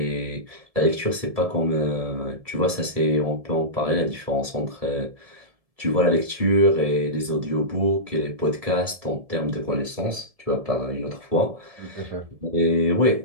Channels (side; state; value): left; late; 1.7 ms